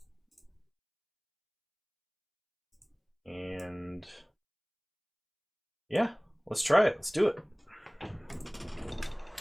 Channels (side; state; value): both; identical; correlation 1.00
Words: And yeah, let's try it. Let's do it.